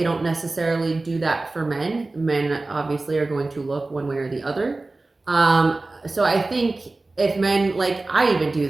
don't necessarily do that for men. Men obviously are going to look one way or the other. So I think if men, like, I even do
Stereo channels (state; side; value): quieter; left; 3.2 dB